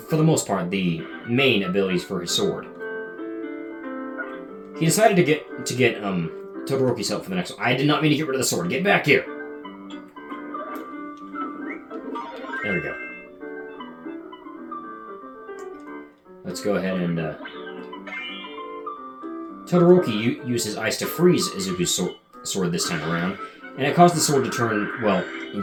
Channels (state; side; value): identical; both; correlation 1.00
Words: for the most part the main abilities for his sword. He decided to get Todoroki's help for the next one. I did not mean to get rid of the sword. Get back here. There we go. Let's go ahead and Todoroki used his ice to freeze Izuku's sword this time around, and it caused the sword to turn,